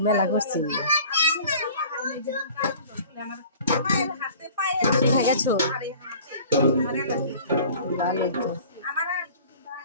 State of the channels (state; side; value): inverted; both; correlation -0.45